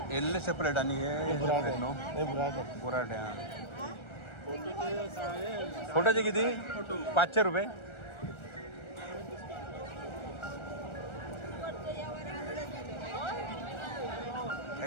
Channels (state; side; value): late; right; 1.3 ms